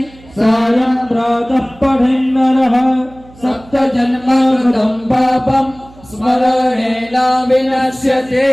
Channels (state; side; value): noise; right; hum, 24 dB below the sound